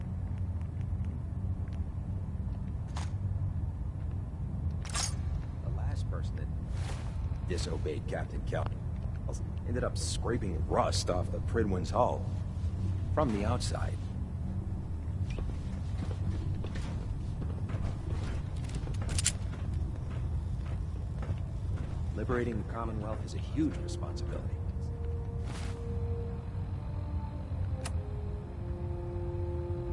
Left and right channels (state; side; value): identical; both; correlation 1.00